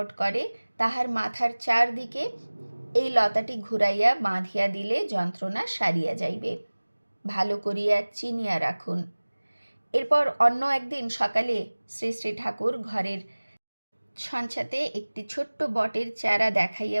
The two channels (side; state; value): both; inverted; correlation -1.00